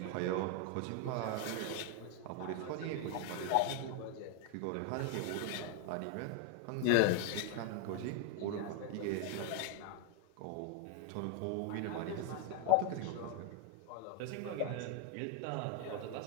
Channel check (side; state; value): both; different; correlation 0.00